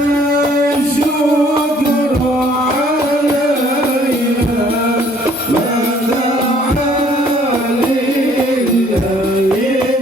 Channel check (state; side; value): normal; both; correlation 0.60